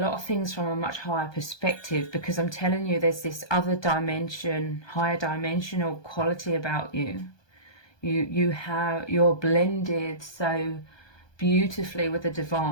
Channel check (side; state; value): right; late; 1.2 ms